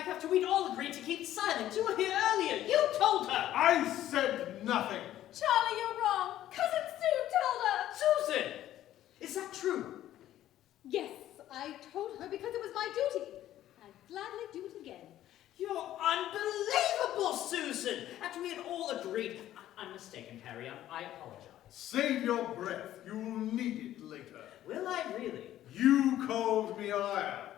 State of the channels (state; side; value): quieter; right; 12.9 dB